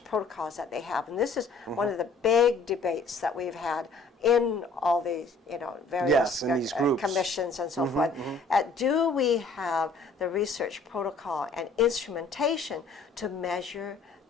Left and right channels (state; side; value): quieter; right; 3.8 dB